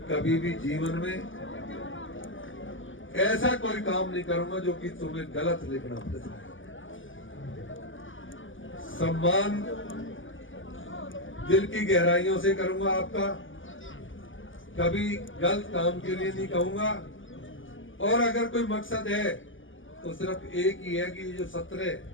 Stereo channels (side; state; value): right; late; 0.57 ms